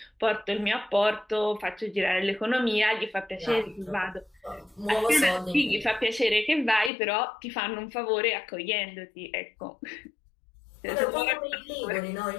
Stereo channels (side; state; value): right; drops out; at 6.9 s